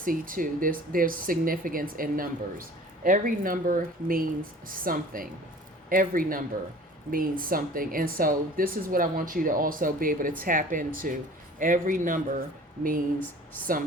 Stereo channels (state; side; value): normal; both; correlation 0.46